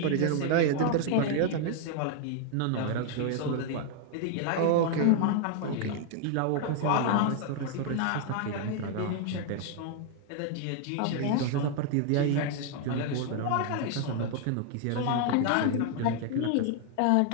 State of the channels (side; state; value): both; different; correlation 0.00